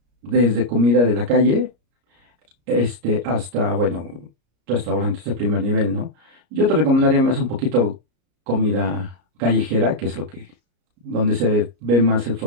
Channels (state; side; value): late; left; 34 ms